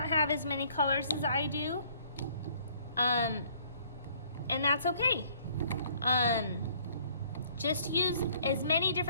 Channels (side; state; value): both; inverted; correlation -0.59